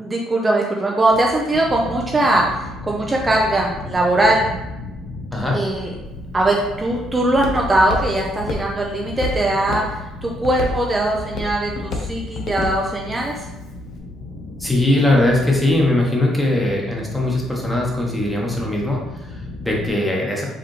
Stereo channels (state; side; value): normal; both; correlation 0.76